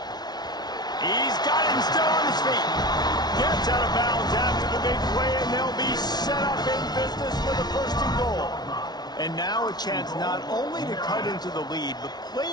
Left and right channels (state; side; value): late; right; 0.19 ms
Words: He's got him still on his feet. Gets out of bounds after the big play, and they'll be set up in business for the first and goal. And now a chance not only to cut into the lead, but play